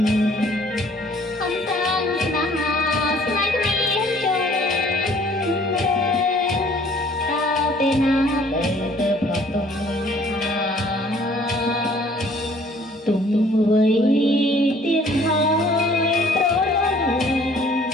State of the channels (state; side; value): normal; both; correlation 0.57